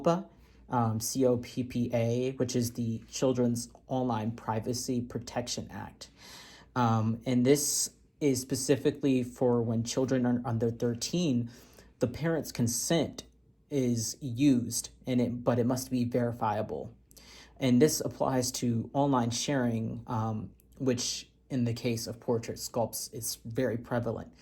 COPPA, which is the Children's Online Privacy Protection Act. And this is specifically for when children are under 13, the parent's consent is used, but it must be verifiable. And this applies to online sharing, which in the case of portrait sculpts is very prevalent.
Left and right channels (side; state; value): both; identical; correlation 1.00